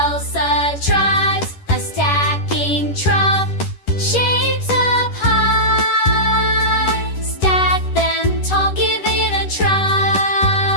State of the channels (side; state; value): right; late; 11 ms